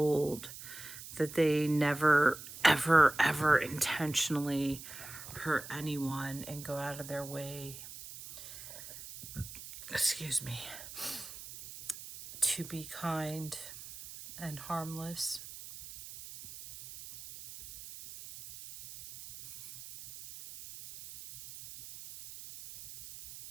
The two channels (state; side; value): noise; right; hiss, 13 dB below the sound